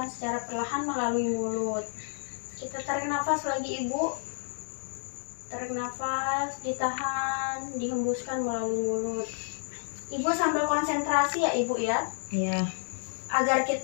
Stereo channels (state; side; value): silent; right; 58 dB below the other